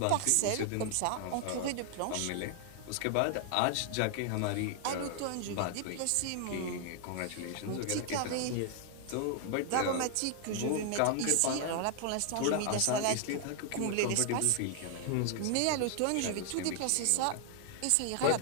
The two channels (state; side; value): different; both; correlation 0.00